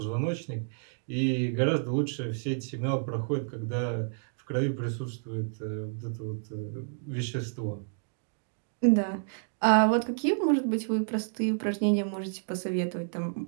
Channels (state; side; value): silent; left; digital silence